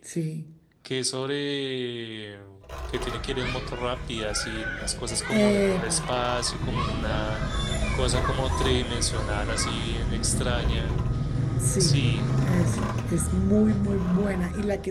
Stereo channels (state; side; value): identical; both; correlation 1.00